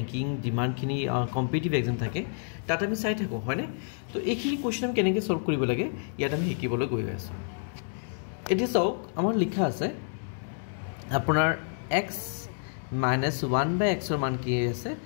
ডিমান্ডখিনি কম্পিটিটিভ এক্সাম থাকে তাত আমি চাই থাকো হয়নে তো এইখিনি কোৱেশ্চন আমি কেনেকৈ সলভ কৰিব লাগে ইয়াত আমি শিকিবলৈ গৈ আছো এতিয়া চাওক আমাৰ লিখা আছে আপোনাৰ x - 1 / x ৰ মান কি আছে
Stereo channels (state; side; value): silent; right; 59 dB below the other